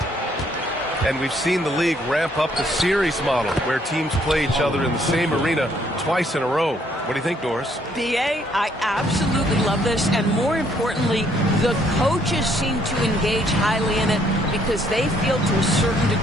And we've seen the league ramp up the series model where teams play each other in the same arena twice in a row. What do you think, Doris? B.A., I absolutely love this. And more importantly, the coaches seem to engage highly in it because they feel to a certain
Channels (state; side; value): normal; both; correlation 0.67